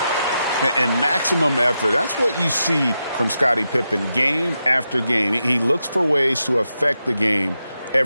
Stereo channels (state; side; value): inverted; both; correlation -0.87